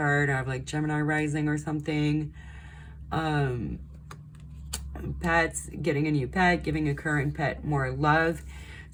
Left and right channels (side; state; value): both; identical; correlation 1.00